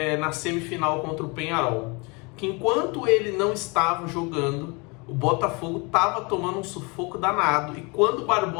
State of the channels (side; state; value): right; quieter; 29.1 dB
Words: na semifinal contra o Peñarol, que enquanto ele não estava jogando, o Botafogo estava tomando um sufoco danado, e quando o